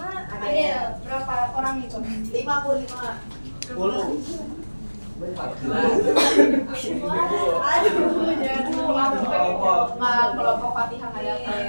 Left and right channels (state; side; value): inverted; both; correlation -1.00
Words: Adel. Berapa orang itu? 55. 10. Aduh, jangan Kelompok Fatihah kayak